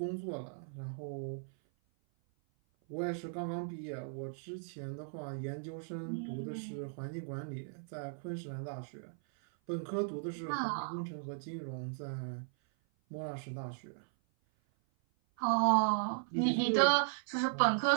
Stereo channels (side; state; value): left; silent; 53 dB below the other